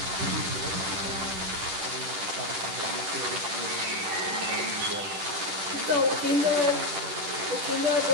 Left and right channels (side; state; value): left; late; 10 ms